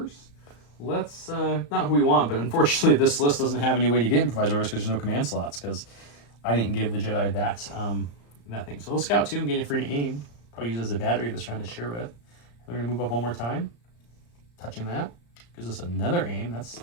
Let's, not who we want, but unfortunately this list doesn't have any way to get improvised orders because there's no command slots, because I didn't give the Jedi that thing. So we'll scout 2 and get it free to aim. Probably use it as a battery this round to share with. We're going to move up one more time. Touching that. Gives us another aim. That's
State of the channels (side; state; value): right; late; 34 ms